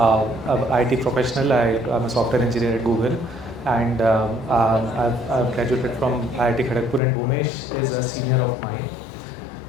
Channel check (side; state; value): right; drops out; at 7.0 s